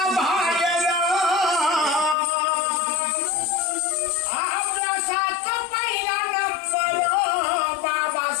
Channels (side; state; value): right; drops out; at 2.1 s